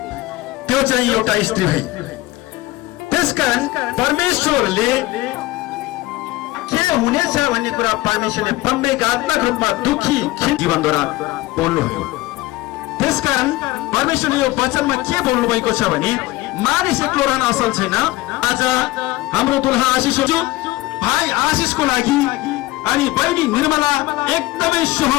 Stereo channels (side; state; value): right; quieter; 18.8 dB